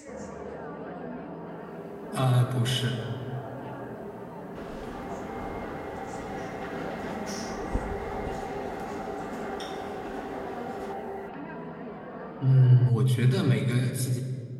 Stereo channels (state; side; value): identical; both; correlation 1.00